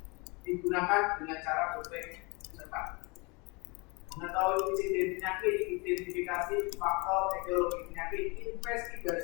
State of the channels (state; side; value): quieter; right; 28.6 dB